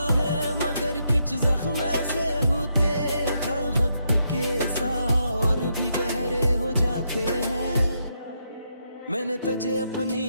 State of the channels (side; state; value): both; inverted; correlation -0.79